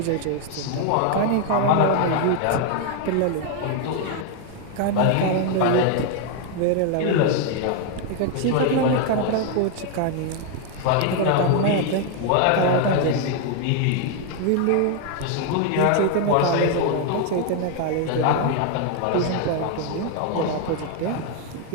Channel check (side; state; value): both; different; correlation 0.01